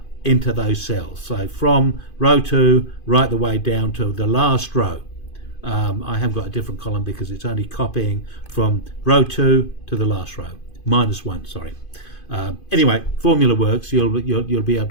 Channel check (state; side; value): late; right; 2.5 ms